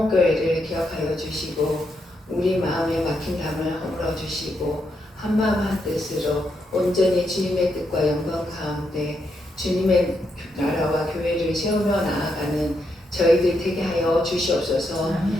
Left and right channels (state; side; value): normal; both; correlation 0.80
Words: 기억하여 주시고 우리 마음에 막힌 담을 허물어 주시고 한마음 한뜻으로 온전히 주님의 뜻과 영광 가운데 주님의 나라와 교회를 세우며 나아가는 저희들 되게 하여 주시옵소서.